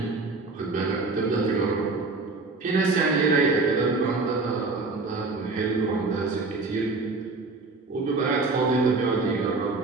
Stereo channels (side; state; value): left; quieter; 3.7 dB